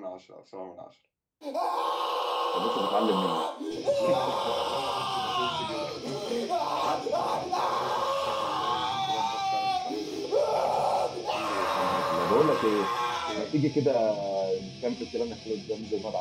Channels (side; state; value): both; identical; correlation 1.00